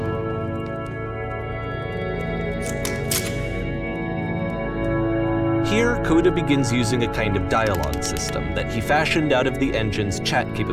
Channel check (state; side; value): identical; both; correlation 1.00